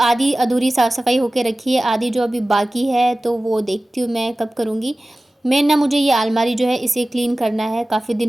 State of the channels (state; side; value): normal; both; correlation 0.97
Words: अधूरी साफ़ सफाई होके रखी है, आधी जो अभी बाकी है तो वो देखती हूँ मैं कब करूँगी। मेन ना मुझे ये अलमारी जो है इसे क्लीन करना है, काफ़ी